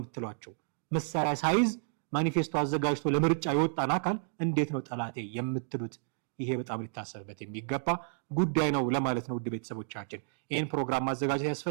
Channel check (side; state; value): left; silent; digital silence